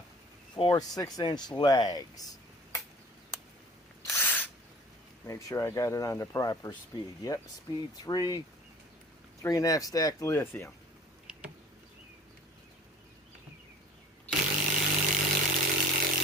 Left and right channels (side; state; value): both; normal; correlation 0.48